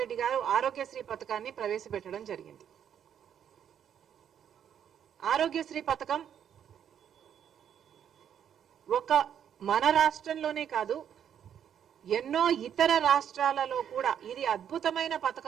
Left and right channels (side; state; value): left; quieter; 9.0 dB